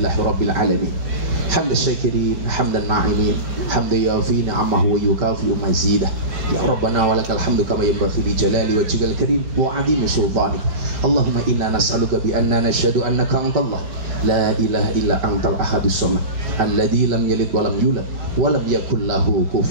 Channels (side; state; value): left; late; 5.2 ms